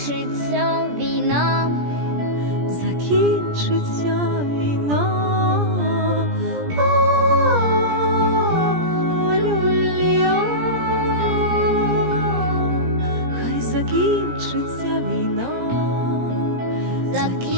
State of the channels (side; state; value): left; late; 17 ms